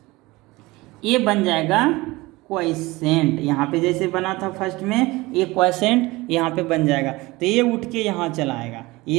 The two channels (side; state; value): left; quieter; 21.2 dB